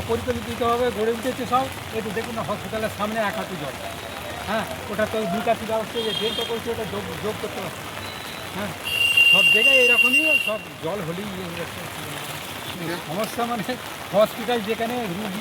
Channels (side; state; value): both; identical; correlation 1.00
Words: গড়ে উঠেছে সব। একটু দেখুন না, হসপিটালের সামনে এক হাঁটু জল। হ্যাঁ, ওটা তো নিকাশি ব্যবস্থা যে ড্রেনটা করছে ওটা যোগ করতে পারছে। হ্যাঁ, সব জায়গায় এরকমই, সব জল হলেই সমস্যা। মানে হসপিটাল যেখানে